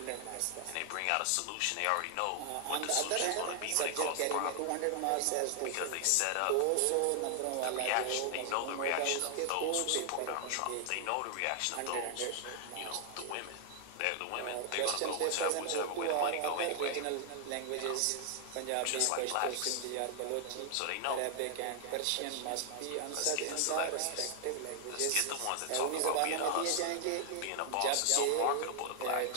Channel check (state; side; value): different; both; correlation 0.00